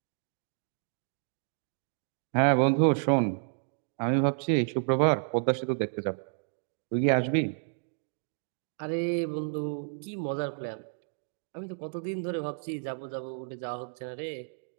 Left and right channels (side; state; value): left; silent; digital silence